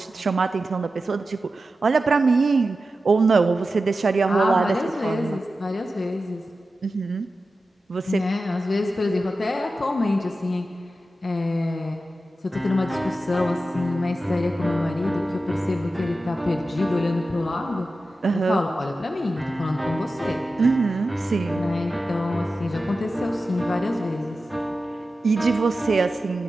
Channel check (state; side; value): normal; both; correlation 0.93